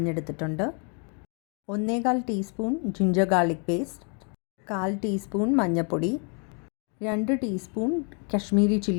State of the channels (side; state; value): right; quieter; 38.2 dB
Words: 1/4 teaspoon ginger garlic paste, 1/4 teaspoon മഞ്ഞൾപ്പൊടി, 2 teaspoon Kashmiri